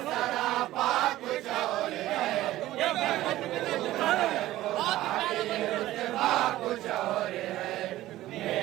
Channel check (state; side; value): quieter; left; 15.5 dB